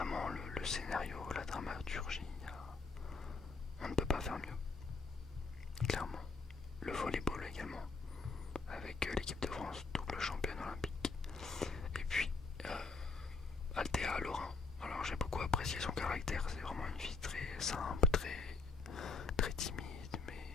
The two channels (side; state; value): right; quieter; 4.3 dB